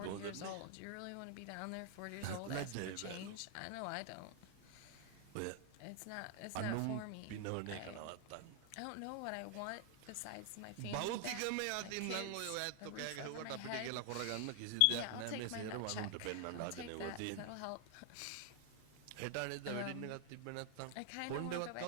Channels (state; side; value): different; both; correlation 0.00